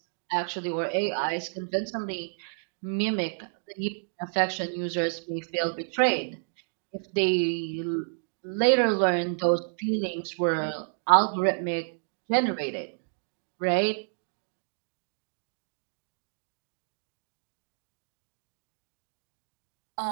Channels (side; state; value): left; silent; digital silence